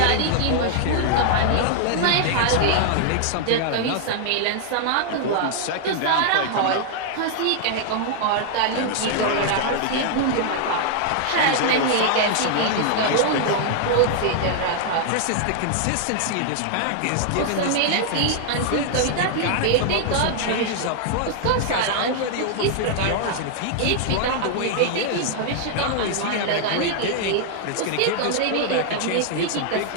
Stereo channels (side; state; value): both; different; correlation -0.01